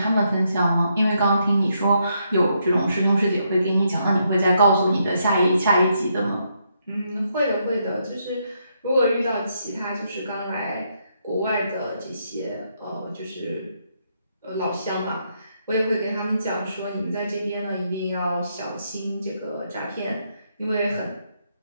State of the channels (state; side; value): inverted; both; correlation -0.77